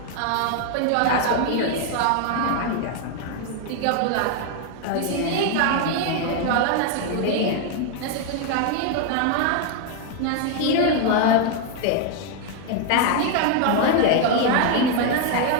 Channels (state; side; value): different; both; correlation 0.01